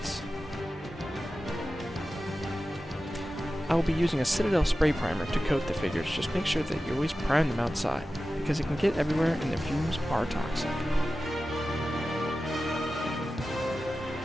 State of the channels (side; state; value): both; normal; correlation 0.94